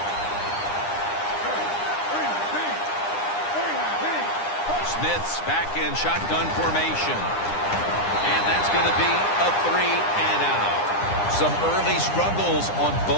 Smith's back in shotgun formation. And that's going to be a 3-and-out. Some early struggles on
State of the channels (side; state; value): right; late; 9.8 ms